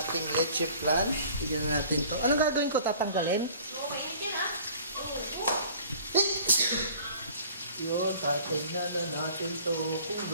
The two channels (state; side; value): inverted; both; correlation -0.50